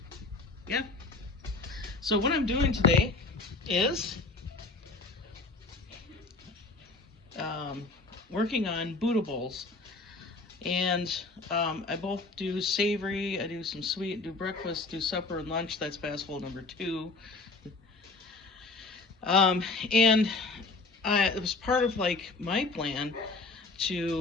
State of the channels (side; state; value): right; quieter; 3.6 dB